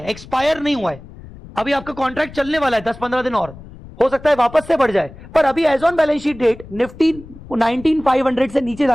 एक्सपायर नहीं हुआ है, अभी आपका कॉन्ट्रैक्ट चलने वाला है 10-15 दिन और, हो सकता है वापस से बढ़ जाए, पर अभी as on balance sheet date Nifty 19,500 से नीचे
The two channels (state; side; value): noise; left; rumble, 18 dB below the sound